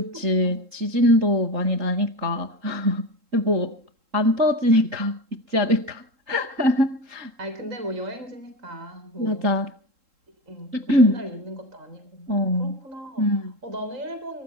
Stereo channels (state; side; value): late; left; 3.7 ms